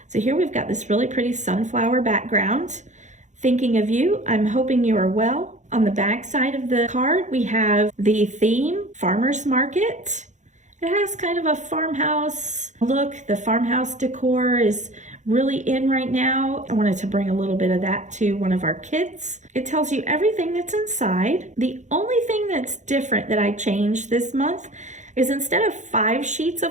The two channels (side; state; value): left; late; 0.35 ms